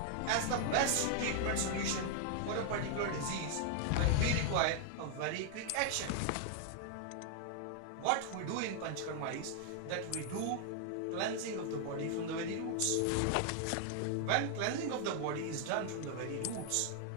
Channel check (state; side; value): different; both; correlation 0.00